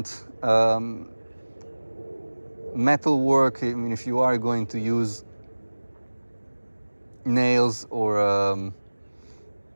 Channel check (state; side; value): inverted; both; correlation -1.00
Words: Metal work, I mean, if you are going to use nails or